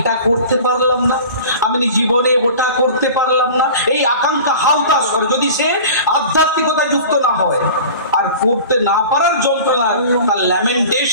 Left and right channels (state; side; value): inverted; both; correlation -0.39